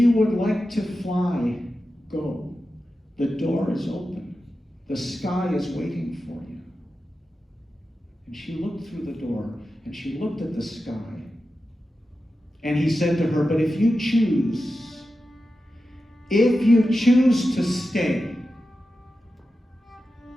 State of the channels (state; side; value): normal; both; correlation 0.92